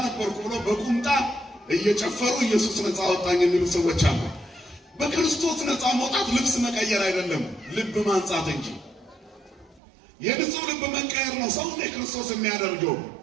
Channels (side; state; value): left; drops out; at 9.8 s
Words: ነበርኩ ብሎ በቁምጣ እየጨፈሩ ኢየሱስ ነፃ አወጣኝ የሚሉ ሰዎች አሉ። በክርስቶስ ነፃ መውጣት ልብስ መቀየር አይደለም፣ ልብ ማንጻት እንጂ። የንጹህ ልብ መቀየር ነው ሰው ክርስቶስ የሚያደርገው።